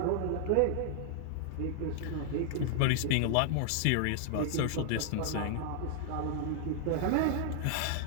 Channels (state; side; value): different; both; correlation 0.00